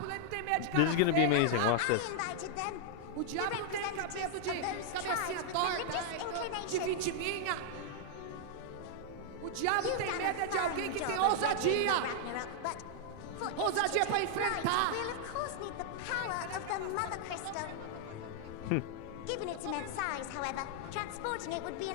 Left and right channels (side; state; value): both; different; correlation -0.01